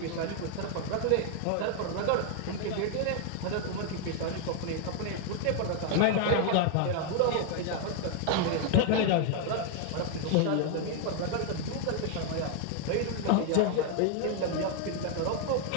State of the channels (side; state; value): both; different; correlation 0.00